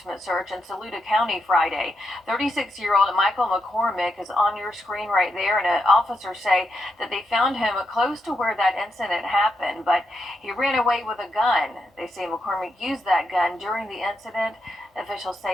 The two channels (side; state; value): both; normal; correlation 0.83